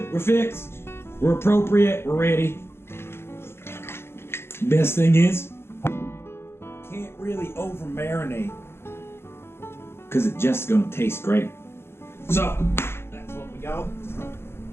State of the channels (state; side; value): late; right; 0.12 ms